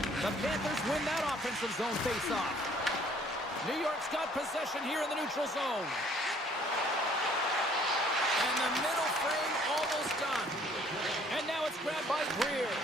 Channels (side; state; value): both; normal; correlation 0.59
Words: The Panthers win that offensive zone face-off. New York's got possession here in the neutral zone. And the middle frame almost done. And now it's grabbed by Greer.